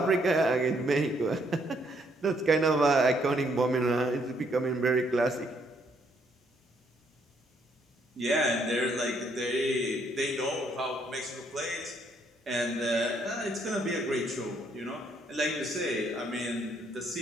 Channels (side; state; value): both; normal; correlation 0.70